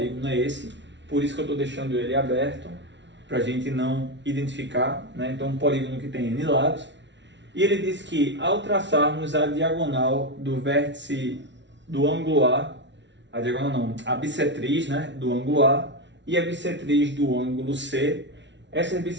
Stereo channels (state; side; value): late; left; 0.52 ms